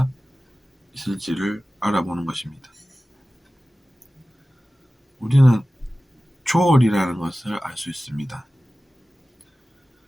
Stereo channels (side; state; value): both; normal; correlation 0.96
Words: 있을지를 알아보는 것입니다. 우리는 초월이라는 것을 알 수 있습니다.